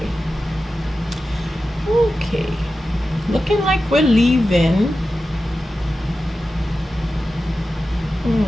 Okay. Looking like we're leaving.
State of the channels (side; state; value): both; normal; correlation 0.93